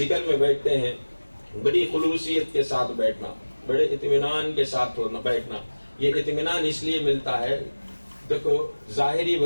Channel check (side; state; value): both; inverted; correlation -1.00